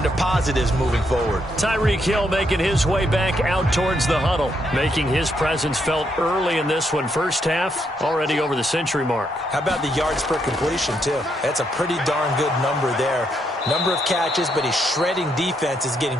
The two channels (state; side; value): normal; both; correlation 0.77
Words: positives moving forward. Tyreek Hill making his way back out towards the huddle, making his presence felt early in this one. First half, already over the century mark. How about the yards per completion, too? That's a pretty darn good number there. Number of catches, but he's shredding defense, is